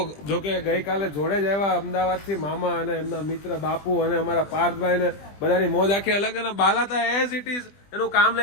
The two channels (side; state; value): right; late; 20 ms